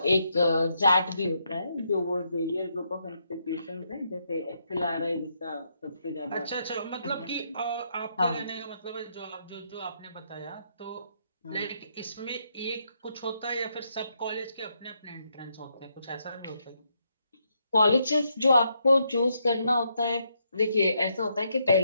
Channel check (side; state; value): both; inverted; correlation -0.78